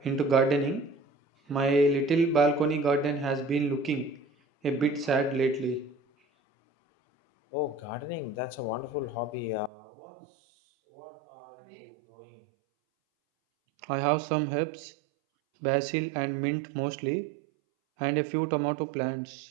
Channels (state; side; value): drops out; left; at 9.7 s